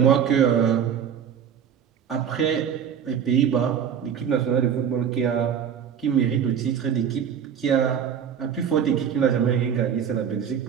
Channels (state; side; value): quieter; left; 8.2 dB